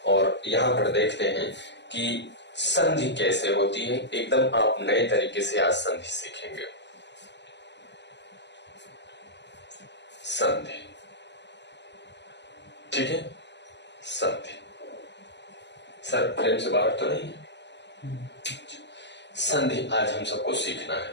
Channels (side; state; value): right; late; 0.51 ms